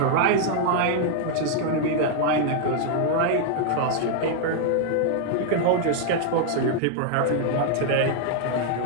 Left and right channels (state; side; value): different; both; correlation -0.01